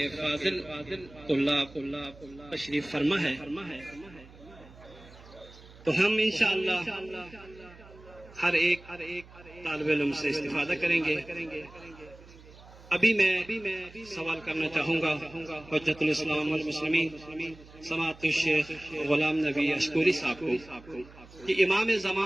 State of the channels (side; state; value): right; noise; hum, 21 dB below the sound